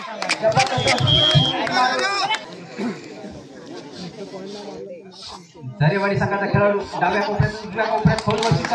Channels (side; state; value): both; identical; correlation 1.00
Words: झरेवाडी संघाचा खेळाडू डाव्या कोपऱ्यात उजव्या कोपऱ्यात खोलवरची